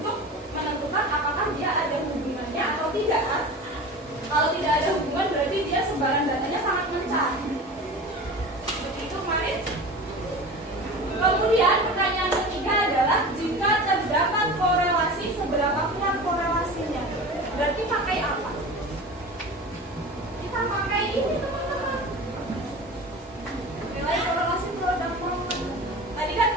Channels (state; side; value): normal; both; correlation 0.34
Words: menentukan apakah dia ada hubungannya atau tidak. Kalau tidak ada hubungan berarti dia sebaran datanya sangat mencar. Seperti itu kemarin. Kemudian pertanyaan ketiga adalah, jika terdapat korelasi, seberapa kuat korelasinya? Berarti pakai apa? Kita pakai ini, teman-teman. Nilai korelasi produk moment. Tadi kan